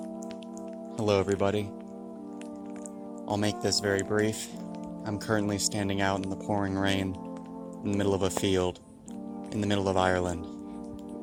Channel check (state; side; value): identical; both; correlation 1.00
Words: everybody. I'll make this very brief. I'm currently standing out in the pouring rain, in the middle of a field, in the middle of Ireland,